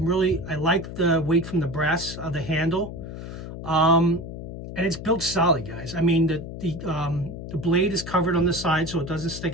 the weight from the brass of the handle. And it's built solid, guys. I mean, the blade is covered on the side, so it doesn't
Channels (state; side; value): noise; left; hum, 9 dB below the sound